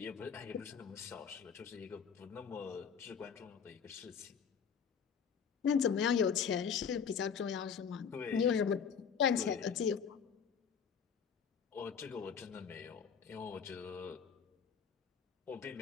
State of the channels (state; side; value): quieter; right; 6.9 dB